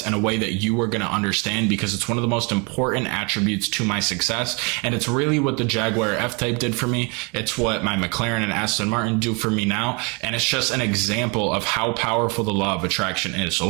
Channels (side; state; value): left; quieter; 31.3 dB